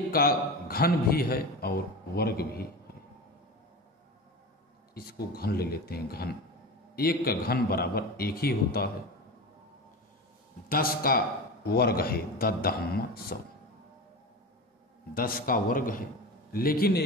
का घन भी है और वर्ग भी है। इसको घन ले लेते हैं, घन। एक का घन बराबर 1 ही होता है। 10 का वर्ग है 10 10 का वर्ग है, लेकिन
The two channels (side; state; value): both; normal; correlation 0.27